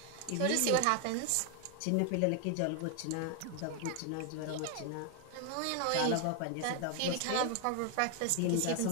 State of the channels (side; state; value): both; different; correlation 0.00